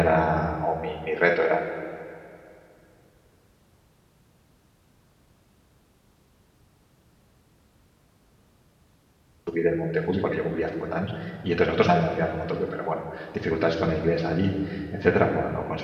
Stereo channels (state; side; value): identical; both; correlation 1.00